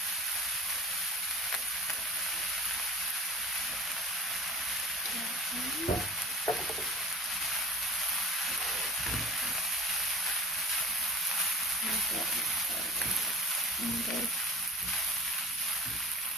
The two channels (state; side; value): normal; both; correlation 0.39